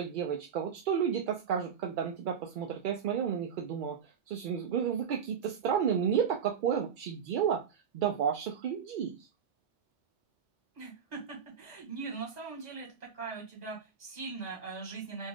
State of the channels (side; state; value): left; quieter; 7.5 dB